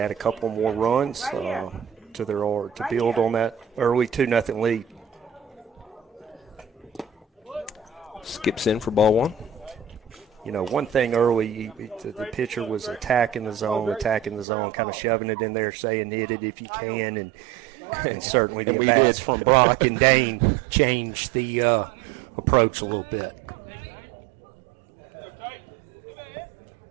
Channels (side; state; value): left; drops out; at 14.5 s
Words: a couple more runs to build on that early 2-0 lead. Skips in for ball 1. One thing early, the pitcher was attacking the zone, kind of shoving it in there, saying hit it if you can, and certainly and the we bats did. from Brock and Dane changed the approach a little bit.